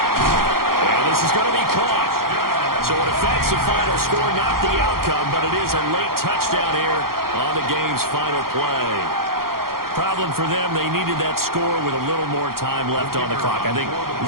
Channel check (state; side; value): late; left; 0.92 ms